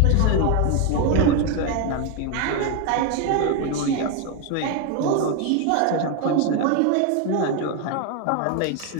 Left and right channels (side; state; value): both; different; correlation 0.02